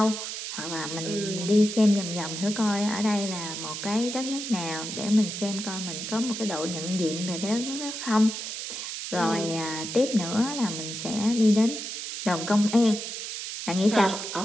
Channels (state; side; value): noise; right; hiss, 6 dB below the sound